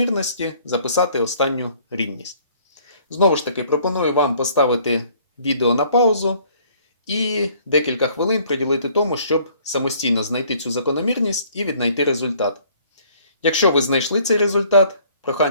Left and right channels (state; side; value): inverted; both; correlation -0.59